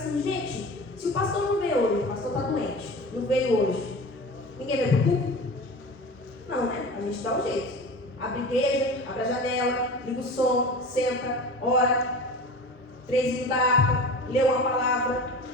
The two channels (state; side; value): normal; both; correlation 0.34